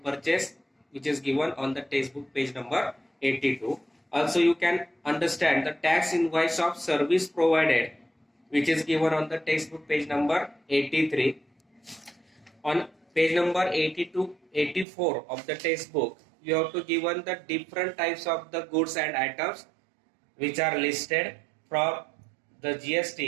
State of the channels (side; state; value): left; drops out; at 14.9 s